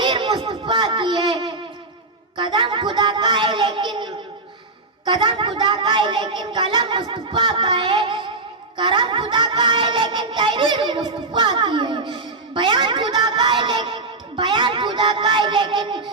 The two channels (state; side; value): quieter; left; 3.4 dB